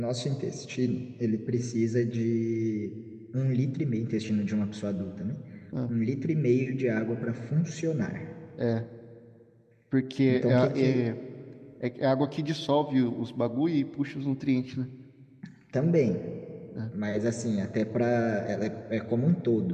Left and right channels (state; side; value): identical; both; correlation 1.00